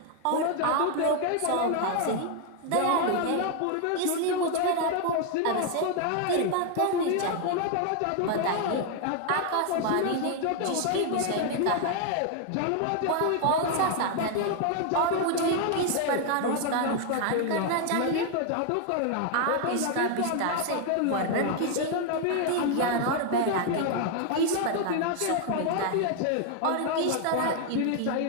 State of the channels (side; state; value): both; different; correlation 0.01